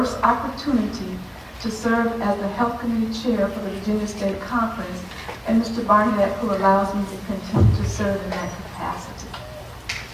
opportunity to serve as the Health Committee Chair for the Virginia State Conference, and Mr. Barnett, who allows me to continue to serve in that capacity.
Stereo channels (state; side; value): identical; both; correlation 1.00